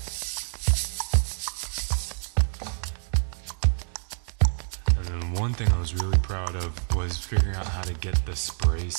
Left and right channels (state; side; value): silent; left; 60 dB below the other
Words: One thing I was really proud of was figuring out how to get the spray